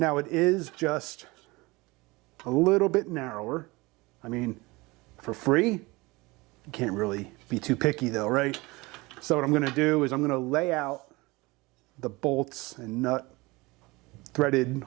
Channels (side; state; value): left; quieter; 23.1 dB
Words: it is just a little bit narrower. I mean, for free, you can't really be too picky though, right? So what I'm gonna do is I'm gonna lay out the bolts and nut threaded